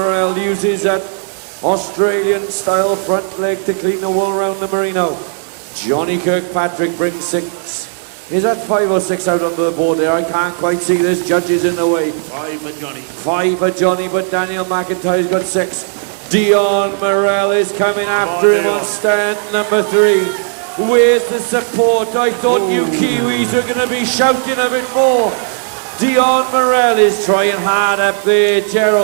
uses that Australian-style front leg to clean the wool around the merino. Johnny Kirkpatrick brings 6. Is that 5 or 6 out onto the board there? I can't quite see. There's judges in the way. 5 for Johnny. 5 for Johnny, but Daniel McIntyre's got 6. Dion Morrell is coming after him on stand number 3. Where's the support? I thought you Kiwis were going to be shouting a bit more. Dion Morrell is trying hard up there,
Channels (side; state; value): left; silent; digital silence